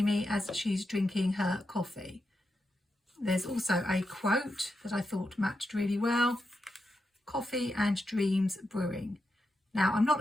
as she's drinking her coffee. There's also a quote that I thought matched really well: "Coffee and dreams brewing." Now, I'm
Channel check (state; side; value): normal; both; correlation 0.87